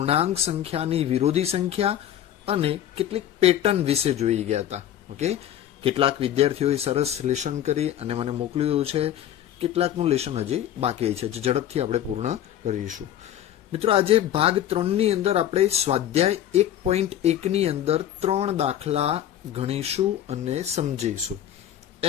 સંખ્યાની વિરોધી સંખ્યા અને કેટલીક પેટર્ન વિશે જોઈ ગયા હતા. ઓકે, કેટલાક વિદ્યાર્થીઓએ સરસ લેશન કરી અને મને મોકલ્યું છે, કેટલાકનું લેશન હજી બાકી છે, જે ઝડપથી આપણે પૂર્ણ કરીશું. મિત્રો, આજે ભાગ 3 ની અંદર આપણે સ્વાધ્યાય 1.1 ની અંદર 3 દાખલા ગણીશું અને સમજીશું.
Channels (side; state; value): right; quieter; 11.3 dB